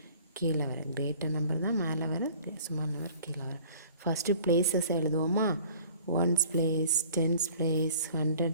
கீழே வர. கிரேட்டர் நம்பர் தான் மேலே வர, ஸ்மால் நம்பர் கீழே வர. ஃபஸ்ட்டு பிளேஸஸ் எழுதுவோமா? Ones place, tens place,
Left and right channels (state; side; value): inverted; both; correlation -0.49